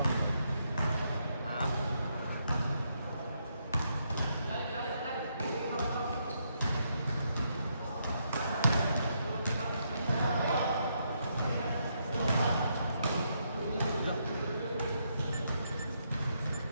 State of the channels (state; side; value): inverted; both; correlation -0.78